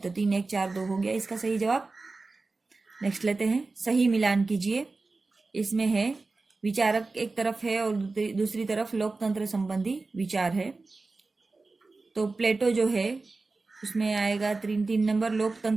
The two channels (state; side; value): quieter; left; 3.7 dB